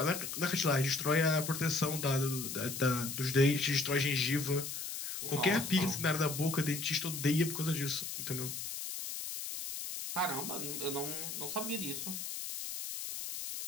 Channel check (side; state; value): left; noise; hiss, 6 dB below the sound